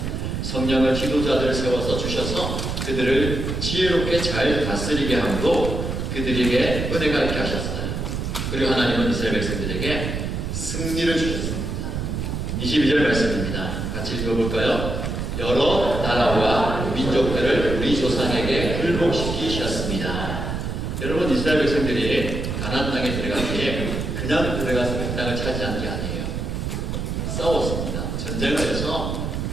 성령을 지도자들을 세워서 주셔서 그들을 지혜롭게 잘 다스리게 함으로 그들에게 은혜가 있게 하셨어요. 그리고 하나님은 이스라엘 백성들에게 승리를 주셨습니다. 22절 말씀입니다. 같이 읽어볼까요? 여러 나라와 민족들을 우리 조상에게 굴복시키셨습니다. 여러분 이스라엘 백성들이 가나안 땅에 들어가기에 그냥 들어가서 그 땅을 차지한 게 아니에요. 싸웠습니다. 전쟁을 해서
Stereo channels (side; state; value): right; noise; rumble, 3 dB below the sound